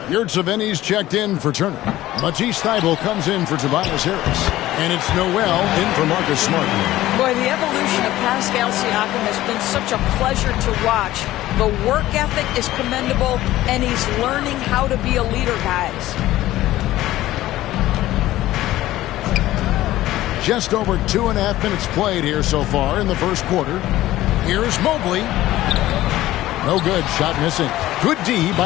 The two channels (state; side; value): quieter; right; 15.5 dB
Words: Yurtseven's checked in for Turner. Matisse Thybulle comes in for Tobias Harris. And it's Noel in for Marcus Smart. Boy, the evolution of Pascal Siakam has been such a pleasure to watch. The work ethic is commendable, and he's learning how to be a leader, guys. Just over 2.5 minutes played here so far in the first quarter. Here's Mobley. No good. Shot missing. Good D